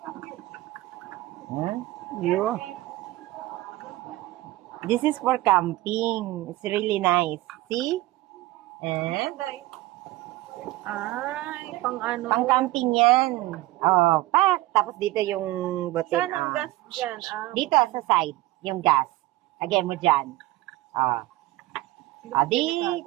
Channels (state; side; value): quieter; left; 18.1 dB